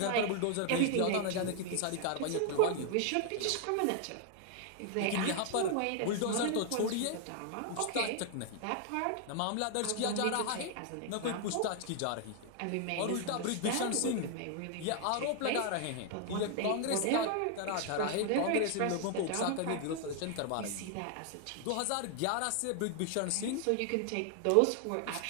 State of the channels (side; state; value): both; different; correlation 0.00